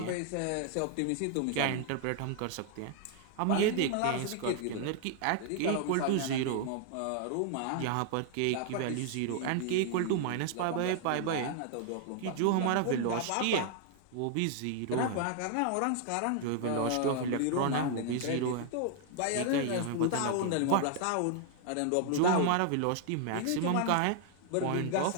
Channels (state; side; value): different; both; correlation 0.00